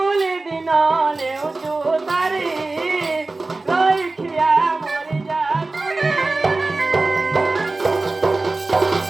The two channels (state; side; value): quieter; left; 3.3 dB